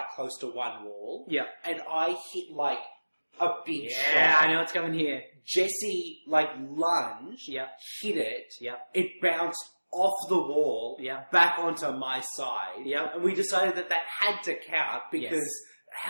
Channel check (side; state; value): both; inverted; correlation -1.00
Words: close to one wall. Yeah. And I hit, like, a big Yeah, shot. I know what's coming here. Jesse, like, lunged, Yeah. hit it. Yeah. It bounced off the wall, Yeah. back onto my side. Yeah. And we decided that had to count because